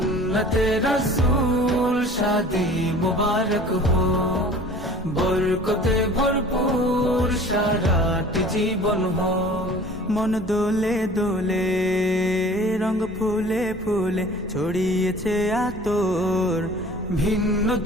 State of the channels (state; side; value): normal; both; correlation 0.46